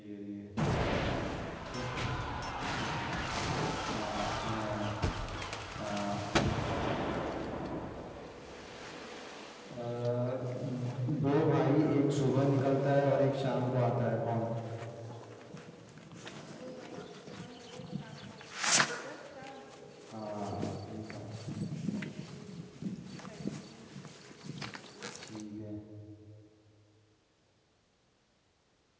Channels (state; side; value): identical; both; correlation 1.00